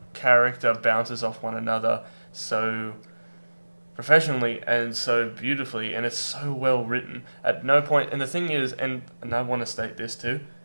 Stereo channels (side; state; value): both; inverted; correlation -1.00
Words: character bounces off one another so professionally and so beautifully, and it's so well written. At no point, and the thing is, and I want to state this too,